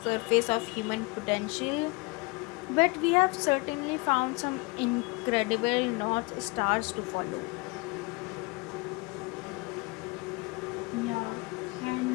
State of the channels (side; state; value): right; quieter; 26.8 dB